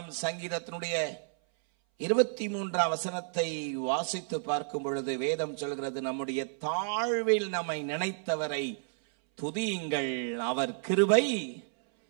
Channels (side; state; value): left; silent; 57 dB below the other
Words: சங்கீதத்தினுடைய 23 வசனத்தை வாசித்து பார்க்கும் பொழுது வேதம் சொல்கிறது, நம்முடைய தாழ்வில் நம்மை நினைத்தவரை துதியுங்கள், அவர் கிருபை